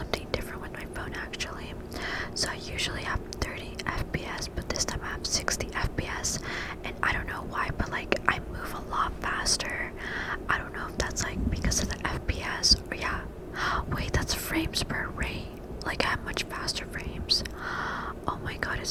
different with my phone actually. So I usually have 30 FPS, but this time I have 60 FPS, and I don't know why, but like I move a lot faster. I don't know if that's like because of the FPS or yeah. Wait, that's frames per rate. Like I have much faster frames. Oh my god,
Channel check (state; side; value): identical; both; correlation 1.00